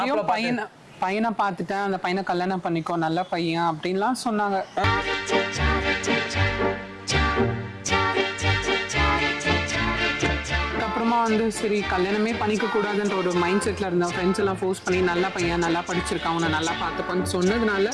பையனை பார்த்துட்டேன், அந்த பையனை கல்யாணம் பண்ணிக்கோ, நல்ல பையன் அப்படின்லாம் சொன்னாங்க. அப்புறமா வந்து சரி கல்யாணமே பண்ணிக்க கூடாதுன்ற ஒரு மைண்ட் செட்ல இருந்த ஃப்ரெண்ட்ஸ் எல்லாம் ஃபோர்ஸ் பண்ணி நல்ல பையன், நல்லா படிச்சிருக்கான், அவனை நல்லா பார்த்துப்பான்னு சொன்னதுனால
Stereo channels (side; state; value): both; identical; correlation 1.00